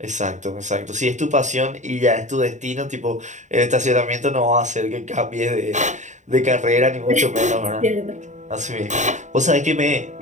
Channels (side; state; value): left; late; 0.35 ms